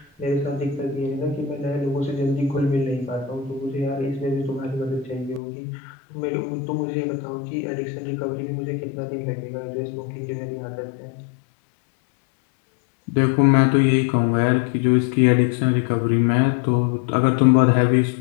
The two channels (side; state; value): right; drops out; at 5.4 s